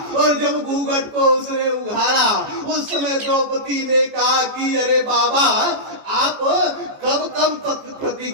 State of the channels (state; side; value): late; left; 14 ms